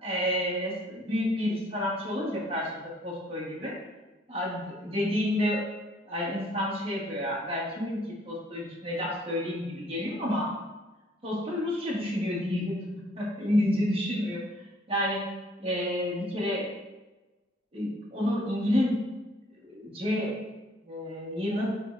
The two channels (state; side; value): normal; both; correlation 0.61